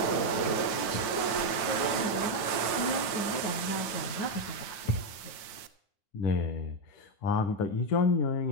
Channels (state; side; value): late; right; 9.7 ms